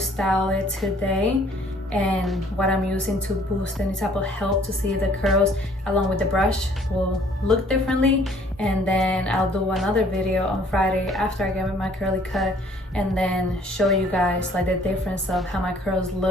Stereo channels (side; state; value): both; normal; correlation 0.58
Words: it today and what I'm using to boost any type of help to see if the curls along with the brush will look differently. And then I'll do another video on Friday after I get my curly cut, and then show you guys like the difference of how my curls